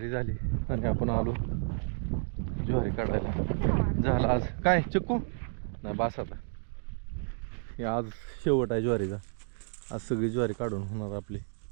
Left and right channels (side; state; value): left; silent; 57 dB below the other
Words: झाली आणि आपण आलो ज्वारी काढायला. झालं आज काय चिक्कू नाही बास. आता हे आज शेवट आहे ज्वारीचा. आज सगळी ज्वारी काढून होणार आपली,